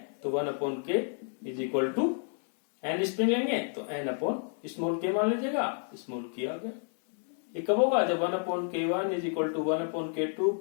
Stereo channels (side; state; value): right; silent; 57 dB below the other